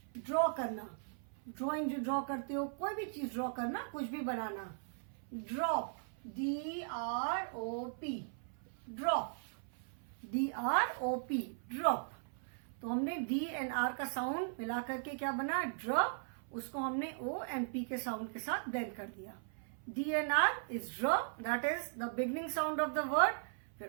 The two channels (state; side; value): silent; left; 52 dB below the other